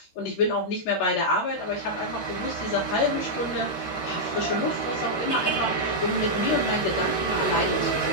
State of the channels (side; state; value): right; late; 13 ms